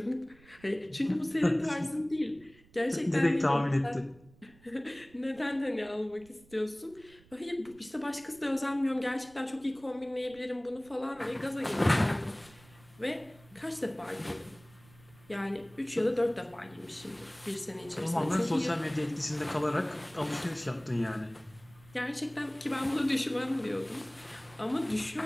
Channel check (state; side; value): noise; right; rumble, 26 dB below the sound